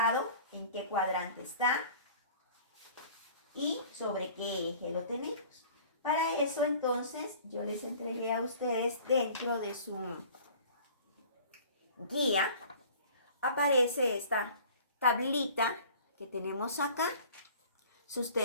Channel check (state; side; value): inverted; both; correlation -0.47